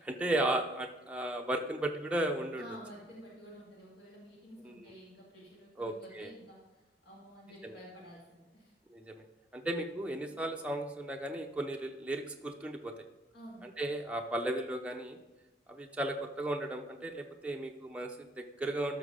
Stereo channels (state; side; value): normal; both; correlation 0.64